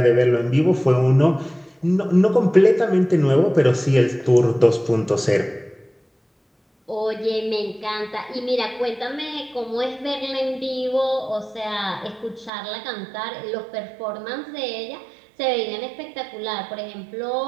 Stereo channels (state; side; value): drops out; left; at 12.5 s